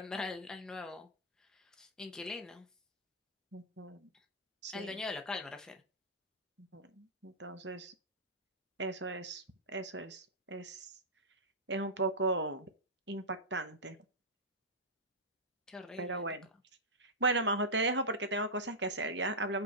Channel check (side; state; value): both; normal; correlation -0.12